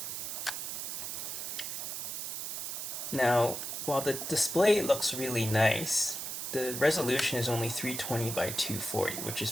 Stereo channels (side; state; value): right; noise; hiss, 4 dB below the sound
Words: Now, while the display looks really nice, the resolution is only 320 by 240, which is